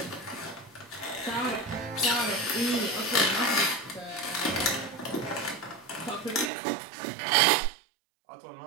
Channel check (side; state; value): left; drops out; at 6.5 s